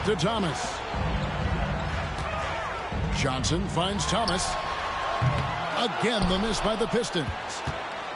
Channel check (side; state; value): both; identical; correlation 1.00